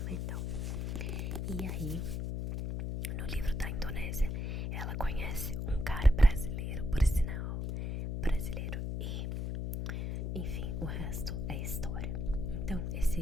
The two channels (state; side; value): noise; left; hum, 2 dB below the sound